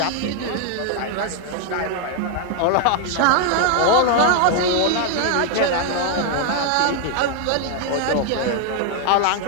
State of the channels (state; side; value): different; both; correlation 0.00